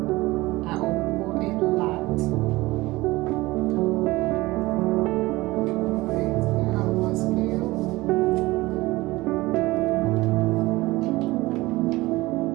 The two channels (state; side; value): quieter; left; 20.1 dB